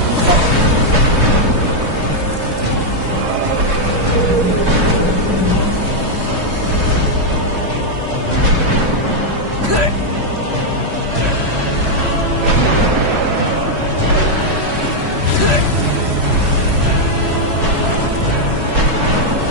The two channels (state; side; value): late; left; 3.0 ms